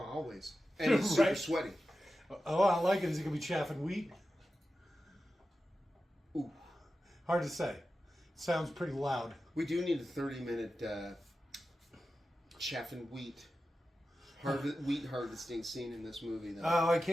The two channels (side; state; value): both; normal; correlation 0.92